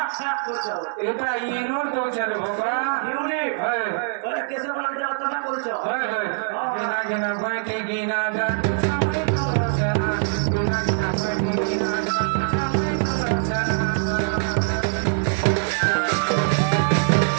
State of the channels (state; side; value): silent; left; digital silence